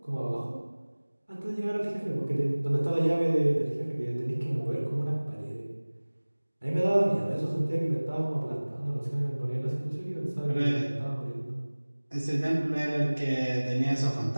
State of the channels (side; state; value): both; inverted; correlation -1.00